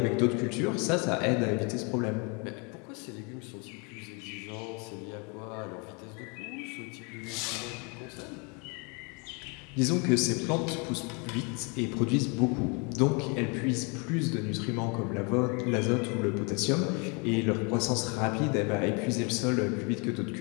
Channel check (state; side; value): quieter; right; 31.9 dB